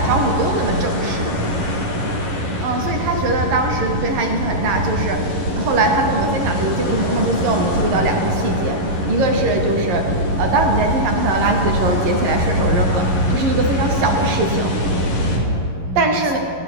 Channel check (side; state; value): left; late; 11 ms